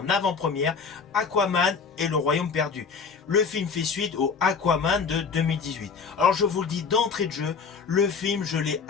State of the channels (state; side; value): quieter; right; 5.5 dB